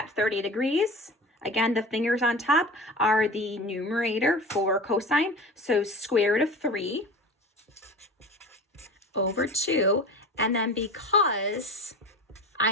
30 degrees, again, the fingers on top are the numerator for cosine. So square root of 3 over 2. And then because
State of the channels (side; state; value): both; normal; correlation 0.35